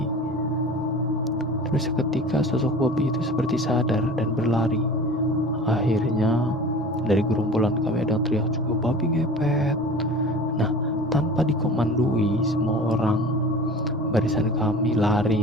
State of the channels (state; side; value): normal; both; correlation 0.39